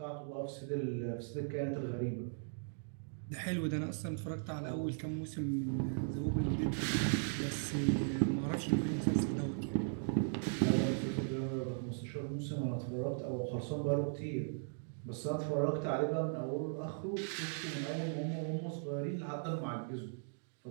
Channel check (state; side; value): silent; left; digital silence